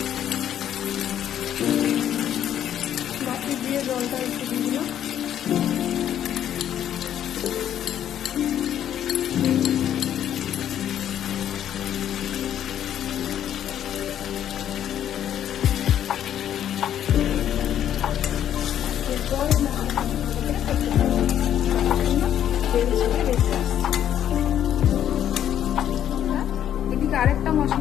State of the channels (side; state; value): right; quieter; 10.5 dB